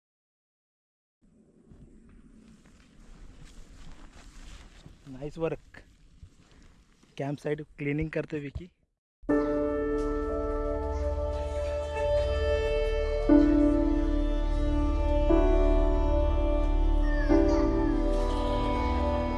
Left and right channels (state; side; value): identical; both; correlation 1.00